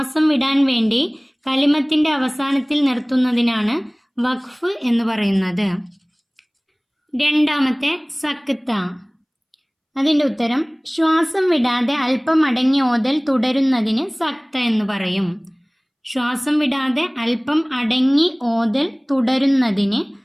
വിടാൻ വേണ്ടി കലിമത്തിൻ്റെ അവസാനത്തിൽ നിർത്തുന്നതിനാണ് വഖഫ് എന്ന് പറയുന്നത്. രണ്ടാമത്തെ സക്ത. അതിൻ്റെ ഉത്തരം ശ്വാസം വിടാതെ അല്പം അടങ്ങി ഓതൽ തുടരുന്നതിന് സക്ത എന്ന് പറയും. ശ്വാസം വിടാതെ അല്പം അടങ്ങി ഓതൽ തുടരുന്നതിന്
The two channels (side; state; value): both; identical; correlation 1.00